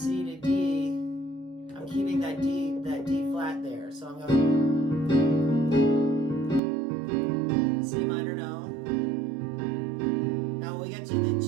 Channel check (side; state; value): left; drops out; at 6.6 s